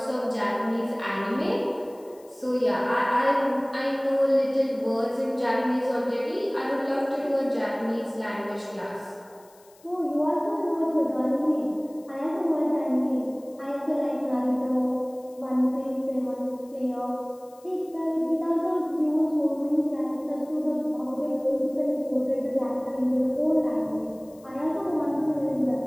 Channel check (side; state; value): left; noise; hiss, 28 dB below the sound